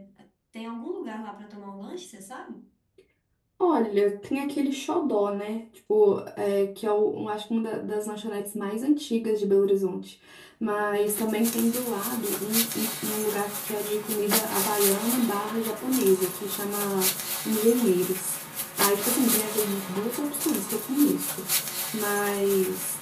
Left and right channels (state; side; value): identical; both; correlation 1.00